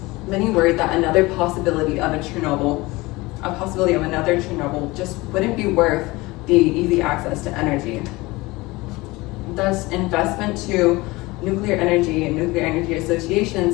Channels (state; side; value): quieter; right; 21.7 dB